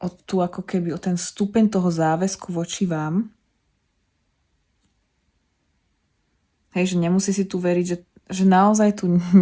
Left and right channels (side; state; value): both; identical; correlation 1.00